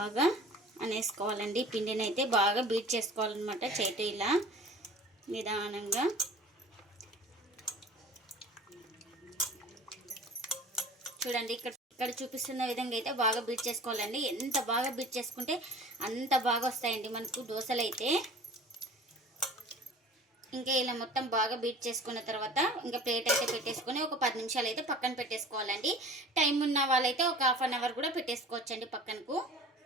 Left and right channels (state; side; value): normal; both; correlation 0.43